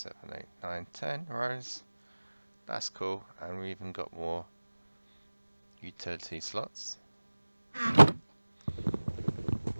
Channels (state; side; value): inverted; both; correlation -1.00